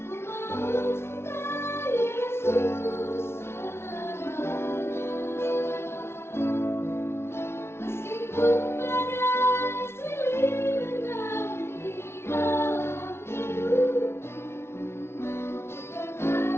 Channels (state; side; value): late; right; 0.12 ms